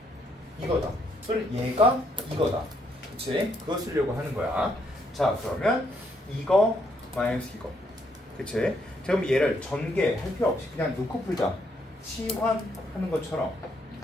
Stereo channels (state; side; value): normal; both; correlation 0.73